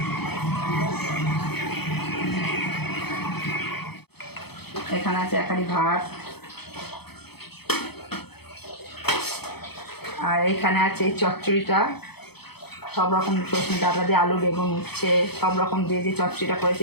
এখানে আছে একারি ভাত, আর এইখানে আছে এই চচ্চড়িটা, সব রকম সজনে ডাটা দিয়ে আলু বেগুন উচ্ছে সব রকম দিয়ে যে চচ্চড়িটা করেছে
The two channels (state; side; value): late; right; 0.97 ms